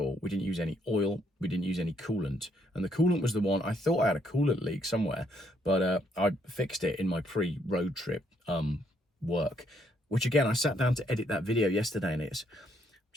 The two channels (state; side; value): normal; both; correlation 0.72